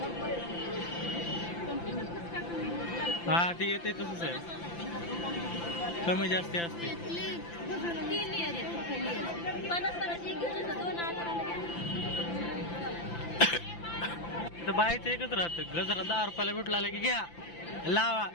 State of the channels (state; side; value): late; right; 5.9 ms